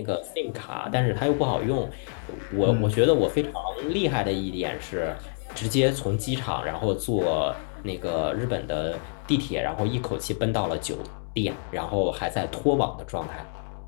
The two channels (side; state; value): right; silent; 60 dB below the other